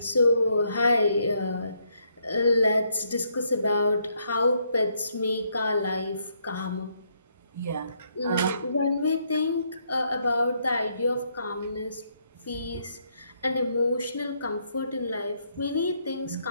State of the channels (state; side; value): inverted; both; correlation -0.74